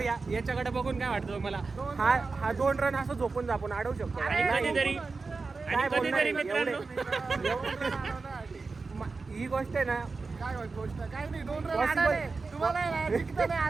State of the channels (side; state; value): left; quieter; 4.2 dB